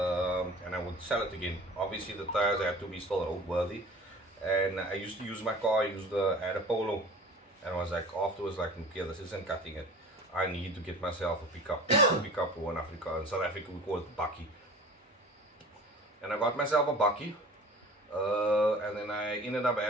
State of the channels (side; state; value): both; normal; correlation 0.41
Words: And I would sell it again. Obviously the tires had to be still roadworthy. And I used to use my car, I had a Polo. And I was like, afterwards, like, okay, this isn't cutting it. I need to get myself a pickup for in Africa. In South Africa, we call it bakkie. And I got myself a bakkie. And then I ended up